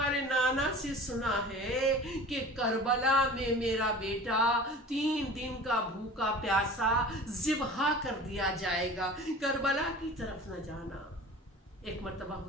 نانا سے سنا ہے کہ کربلا میں میرا بیٹا 3 دن کا بھوکا پیاسا ذبح کر دیا جائے گا، کربلا کی طرف نہ جانا. ایک مرتبہ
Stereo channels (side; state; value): both; normal; correlation 0.40